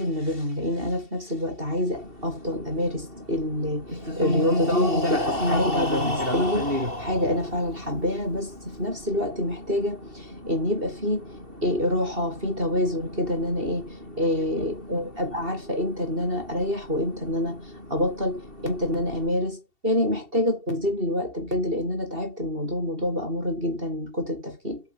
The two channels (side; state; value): left; late; 2.7 ms